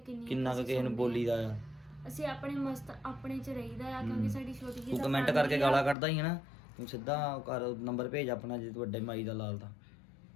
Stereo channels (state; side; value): drops out; right; at 6.0 s